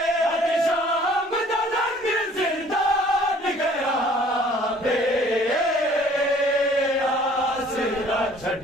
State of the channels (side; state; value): both; normal; correlation 0.55